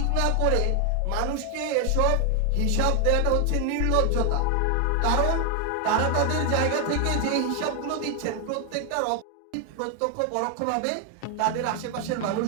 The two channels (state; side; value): different; both; correlation 0.00